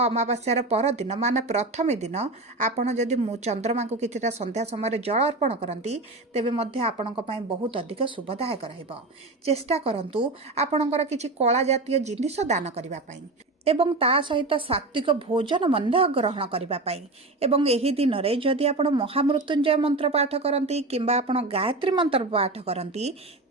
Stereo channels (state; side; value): quieter; left; 3.0 dB